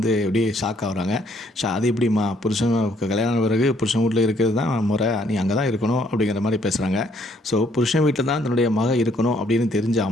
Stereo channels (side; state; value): both; normal; correlation 0.67